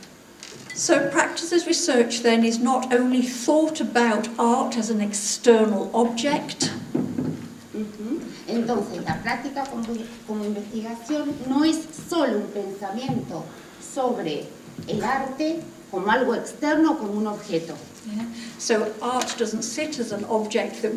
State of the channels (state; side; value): identical; both; correlation 1.00